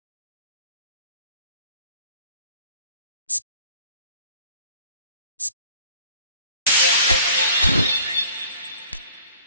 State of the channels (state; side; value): inverted; both; correlation -0.51